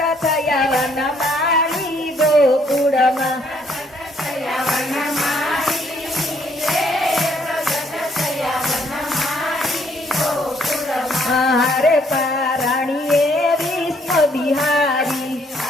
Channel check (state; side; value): normal; both; correlation 0.67